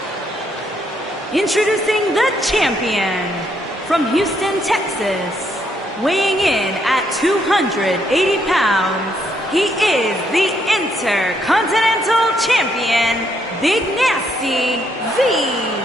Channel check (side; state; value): both; normal; correlation 0.74